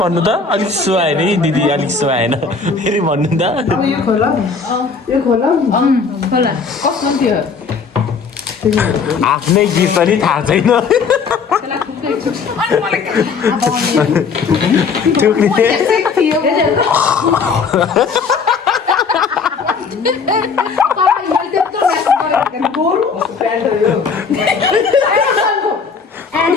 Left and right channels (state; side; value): quieter; right; 5.2 dB